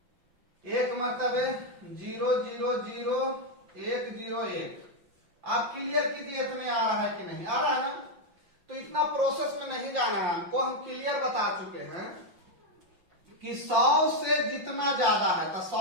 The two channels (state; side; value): late; left; 5.7 ms